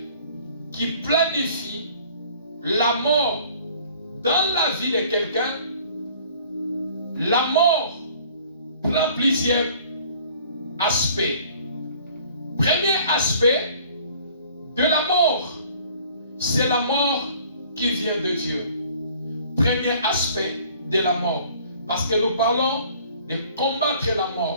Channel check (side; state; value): both; inverted; correlation -0.53